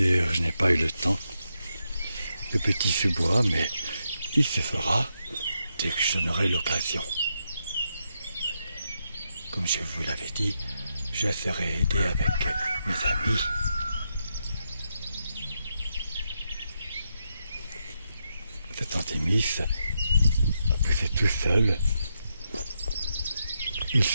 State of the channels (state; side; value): inverted; both; correlation -0.83